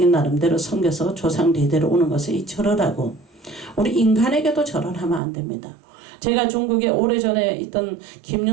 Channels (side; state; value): left; drops out; at 5.2 s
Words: 나름대로 섬겨서 조상 대대로 오는 것을 이 절을 하고, 우리 인간에게도 절을 하면 안 됩니다. 제가 중국에 오래전에 있던